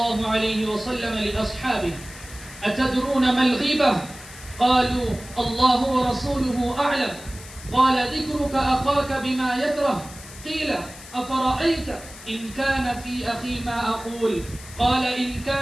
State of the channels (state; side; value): noise; left; hiss, 17 dB below the sound